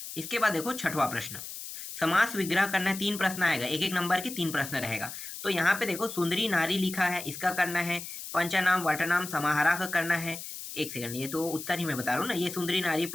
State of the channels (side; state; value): left; noise; hiss, 10 dB below the sound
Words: इसके बाद देखो छठवां प्रश्न, समास विग्रह करना है। 3 प्रश्न आएगा, एक एक नंबर के 3 प्रश्न रहेगा। तो यहाँ पे देखो सुंदरी नारी लिखा है, इसका करना है। पंचनाम वटनाम समाहारा का करना है। एक सेकंड, ये तो उत्तर ही मैं बता रहा हूँ ना, ये सुंदरी नारी